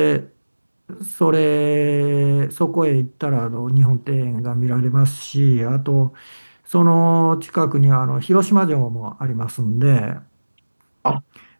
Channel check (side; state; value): both; inverted; correlation -1.00